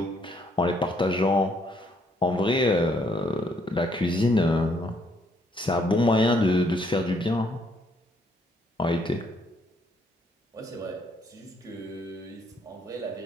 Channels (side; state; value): both; normal; correlation 0.69